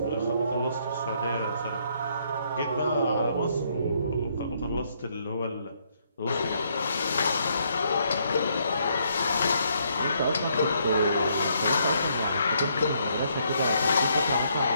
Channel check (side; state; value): both; inverted; correlation -0.71